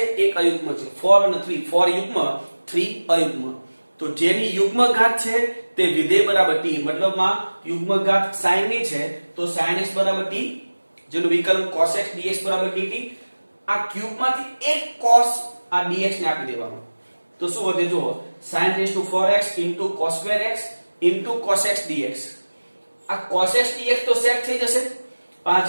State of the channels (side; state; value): both; inverted; correlation -1.00